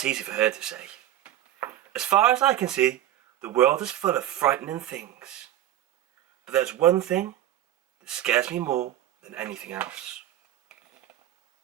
easy for her to say. As far as I can see, the world is full of frightening things. But there's one thing that scares me more than anything else.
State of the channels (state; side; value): quieter; left; 12.5 dB